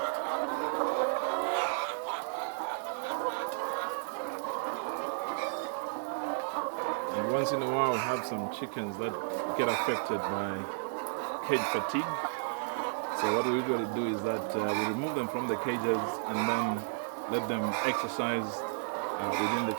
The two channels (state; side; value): silent; left; digital silence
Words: And once in a while, we have some chickens that get affected by cage fatigue. So So what we usually do is that we remove them from the cages and then let them exercise within the